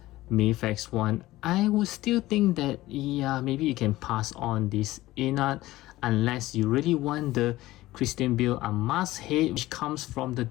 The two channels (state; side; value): quieter; right; 17.1 dB